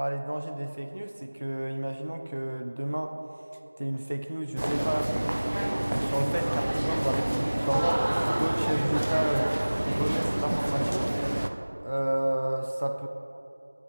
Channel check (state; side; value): inverted; both; correlation -1.00